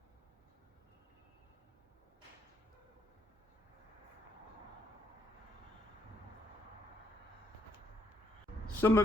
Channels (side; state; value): both; normal; correlation 0.72